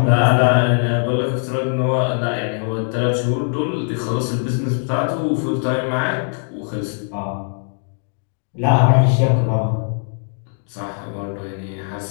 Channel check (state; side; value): silent; right; 60 dB below the other